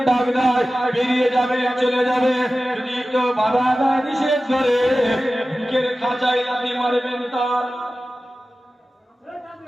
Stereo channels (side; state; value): both; normal; correlation 0.95